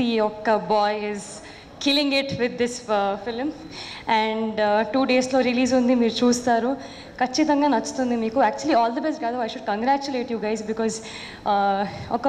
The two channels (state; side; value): identical; both; correlation 1.00